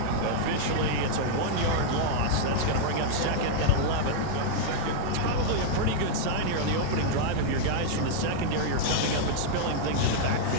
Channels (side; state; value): both; different; correlation -0.01